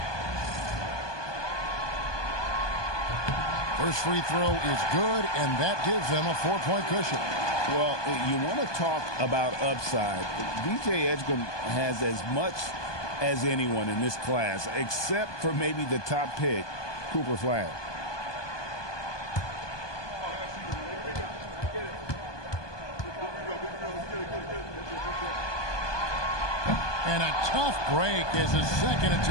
First free throw is good, and that gives them a 4-point cushion. Well, you want to talk about upside. DJ Edgecombe has as much as anyone in this class, except for maybe the top pick, Cooper Flag. And a tough break as his second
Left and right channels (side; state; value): right; late; 1.2 ms